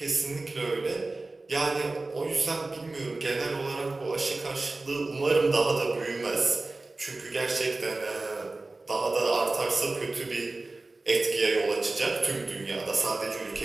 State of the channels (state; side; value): quieter; left; 3.2 dB